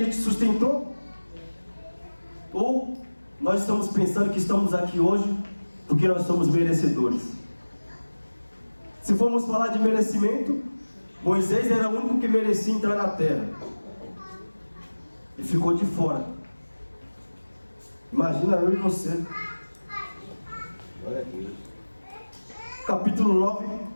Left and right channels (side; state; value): both; inverted; correlation -1.00